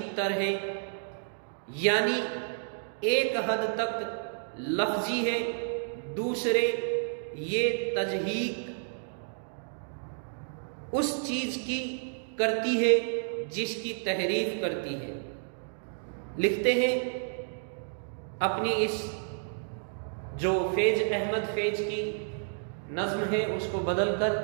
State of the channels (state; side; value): silent; left; digital silence